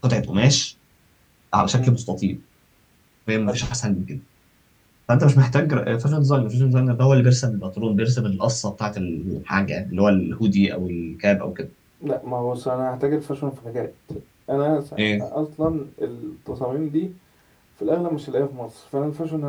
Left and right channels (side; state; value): both; identical; correlation 1.00